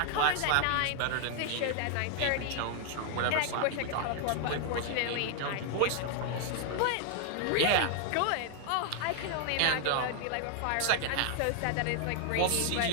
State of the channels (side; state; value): both; different; correlation 0.00